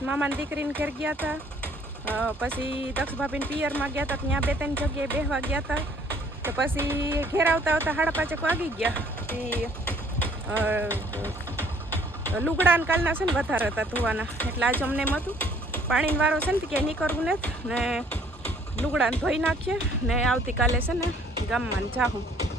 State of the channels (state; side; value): normal; both; correlation 0.59